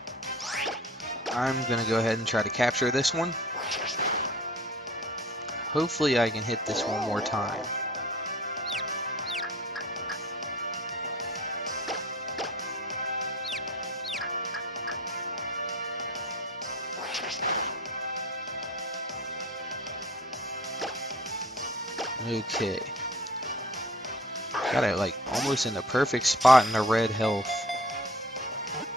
I'm going to go ahead and try to capture this one. Hopefully I can hit this one more time. Okay. Got it like almost in the perfect spot in the red health.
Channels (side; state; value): both; normal; correlation 0.46